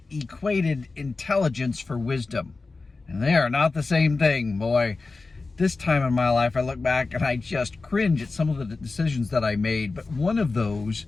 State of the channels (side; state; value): right; quieter; 3.8 dB